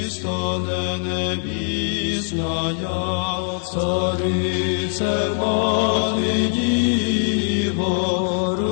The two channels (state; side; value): silent; right; 65 dB below the other